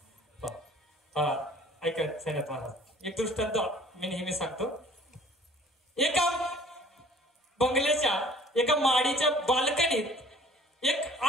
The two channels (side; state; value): both; normal; correlation 0.52